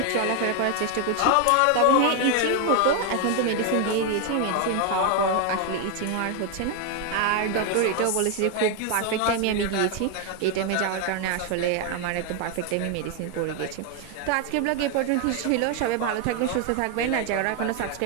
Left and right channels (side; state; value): both; different; correlation 0.01